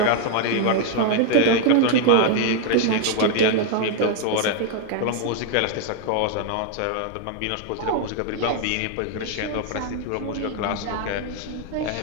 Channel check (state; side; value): different; both; correlation 0.01